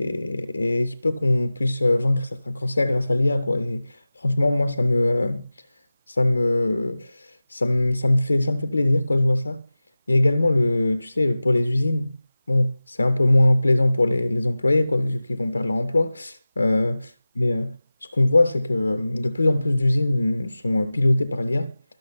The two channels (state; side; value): inverted; both; correlation -0.97